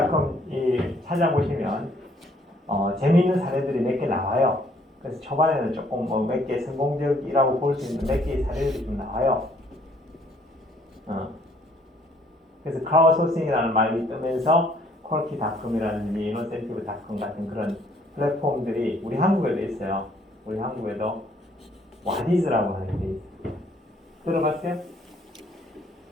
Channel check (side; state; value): both; normal; correlation 0.63